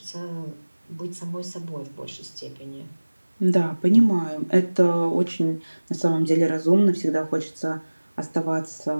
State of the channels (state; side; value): inverted; both; correlation -1.00